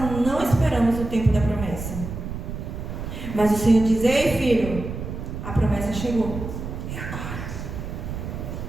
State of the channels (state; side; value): noise; right; rumble, 7 dB below the sound